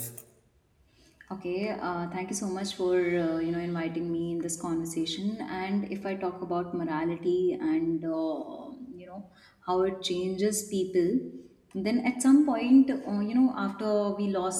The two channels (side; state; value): both; identical; correlation 1.00